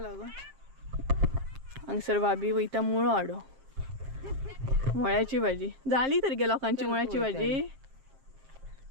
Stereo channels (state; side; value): late; left; 7.5 ms